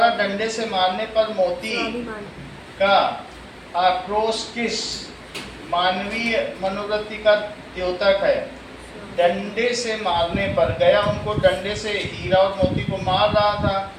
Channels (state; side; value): identical; both; correlation 1.00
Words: डंडे से मारने पर मोती का आक्रोश किस मानवीय मनोवृत्ति का द्योतक है? डंडे से मारने पर, गया उनको डंडे से, हीरा और मोती को मार रहा था,